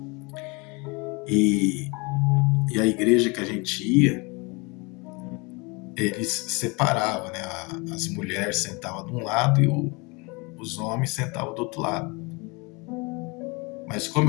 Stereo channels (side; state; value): right; quieter; 28.2 dB